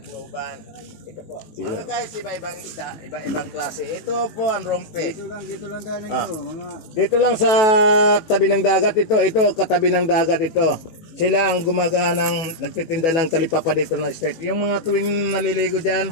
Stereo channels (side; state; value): right; late; 18 ms